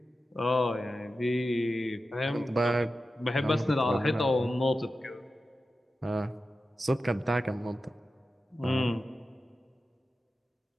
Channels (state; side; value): normal; both; correlation 0.92